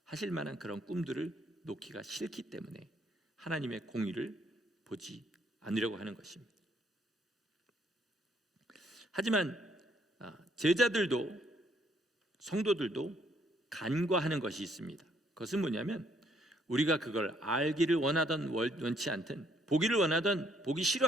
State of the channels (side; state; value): both; normal; correlation 0.68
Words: 하실 만한 그런 꿈들을 놓기가 싫기 때문에 하나님의 공의를 보지 않으려고 하는 것입니다. 하지만 제자들도 성도들도 간과하는 것이 있습니다. 그것은 뭐냐면 우리가 그걸 알기를 원하던 원치 않든 보기를 원하던 보기